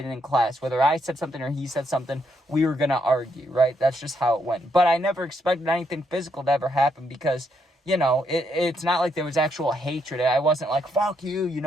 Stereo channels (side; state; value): both; normal; correlation 0.76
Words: in class. Whether I said something or he said something, we were going to argue, right? That's just how it went. But I never expected anything physical to ever happen because, it's not like there was actual hatred. I wasn't fuck you, you